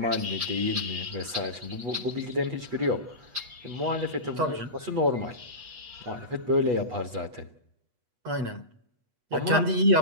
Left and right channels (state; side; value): late; left; 8.2 ms